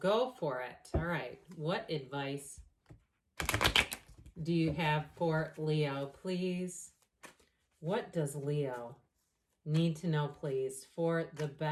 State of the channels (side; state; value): both; identical; correlation 1.00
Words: for it. All right. What advice do you have for Leo, please? What does Leo need to know, please, for the